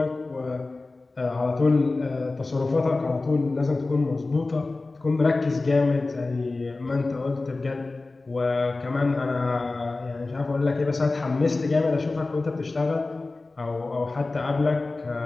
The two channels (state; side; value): quieter; right; 3.4 dB